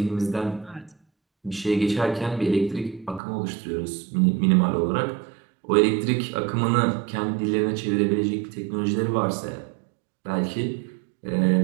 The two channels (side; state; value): left; drops out; at 3.2 s